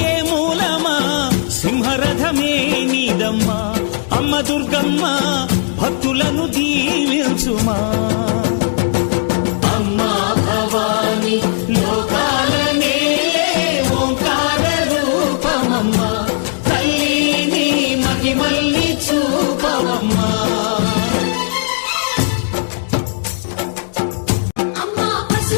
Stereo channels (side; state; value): right; silent; digital silence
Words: మూలమా సింహరథమే నీదమ్మా అమ్మ దుర్గమ్మ భక్తులను దీవించుమా అమ్మా భవాని లోకాల నేలే ఓంకార రూపమమ్మా తల్లిని మహిమల్ని చూపవమ్మా